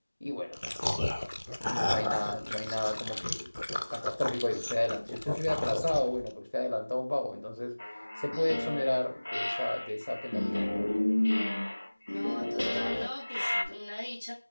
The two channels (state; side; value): inverted; both; correlation -1.00